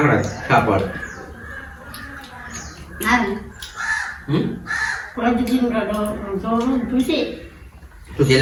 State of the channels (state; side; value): identical; both; correlation 1.00